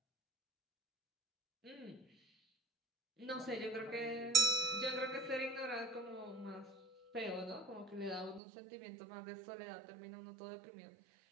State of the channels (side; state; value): left; drops out; at 8.4 s